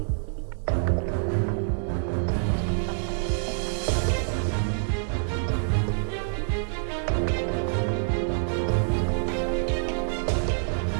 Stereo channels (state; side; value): silent; left; digital silence